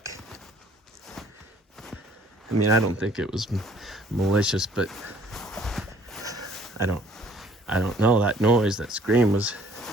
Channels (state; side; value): normal; both; correlation 0.58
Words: I mean, I don't think it was malicious, but I don't know. That noise, that scream was